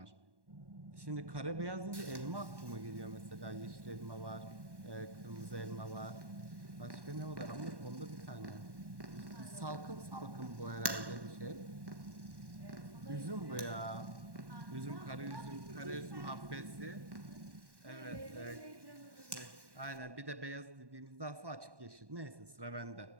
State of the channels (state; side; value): late; left; 1.1 ms